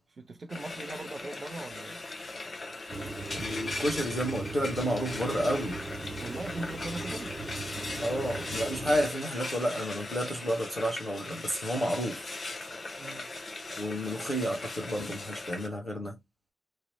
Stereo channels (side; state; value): both; normal; correlation 0.85